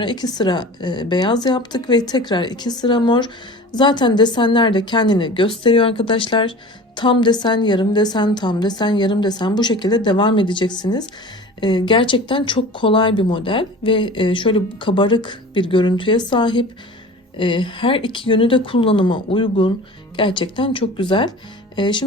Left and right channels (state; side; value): normal; both; correlation 0.38